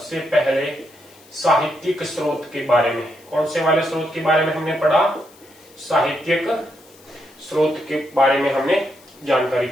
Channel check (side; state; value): left; noise; hiss, 26 dB below the sound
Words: पहले साहित्यिक स्रोत के बारे में। कौन से वाले स्रोत के बारे में हमने पढ़ा? साहित्यिक स्रोत के बारे में हमने जानकारी